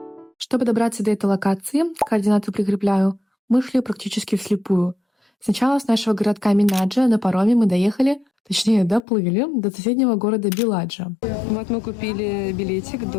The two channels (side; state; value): right; drops out; at 9.0 s